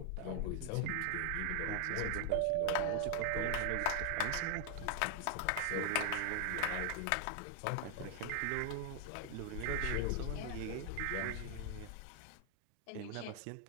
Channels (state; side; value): different; both; correlation 0.00